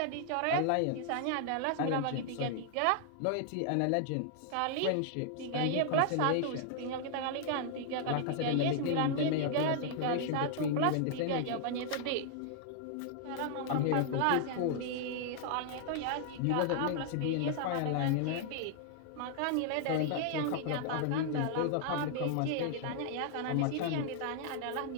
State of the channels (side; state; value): both; different; correlation 0.00